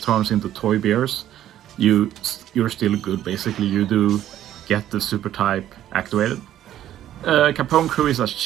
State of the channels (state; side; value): quieter; left; 12.0 dB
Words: into toy bears, you're still good basically. You do get the super type activated. Capone Crew is a